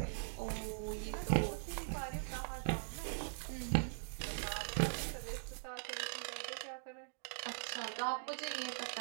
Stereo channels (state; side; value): silent; left; digital silence